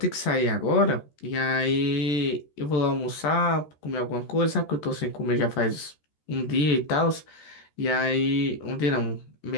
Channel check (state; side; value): late; right; 13 ms